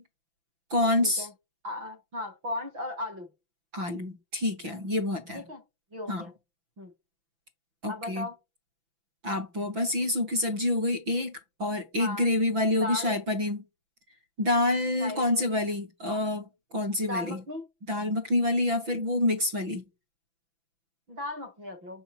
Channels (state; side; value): late; left; 6.0 ms